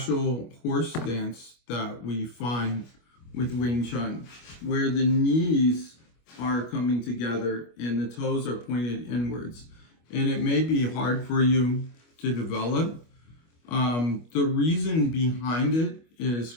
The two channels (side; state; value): right; late; 25 ms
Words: horse dance that we find with Wing Chun, where the knees are coming together and the toes are pointed inwards. And it may be hard for you to develop. The reason behind it is